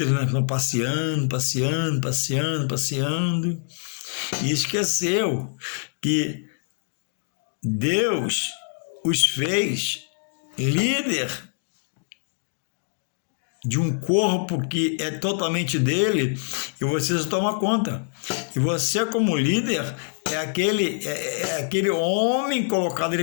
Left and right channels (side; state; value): right; silent; digital silence